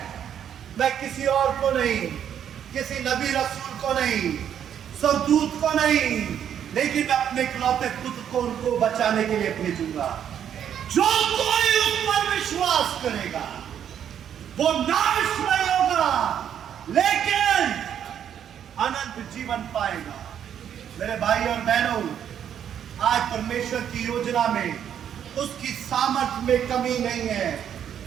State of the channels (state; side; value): quieter; left; 9.2 dB